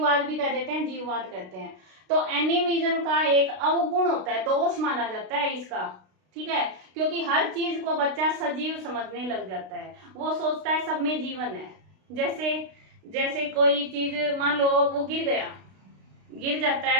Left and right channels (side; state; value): left; late; 32 ms